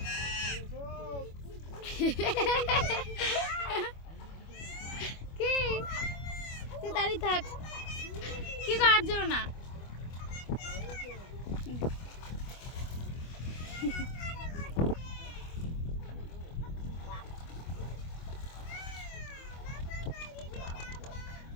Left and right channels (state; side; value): late; right; 25 ms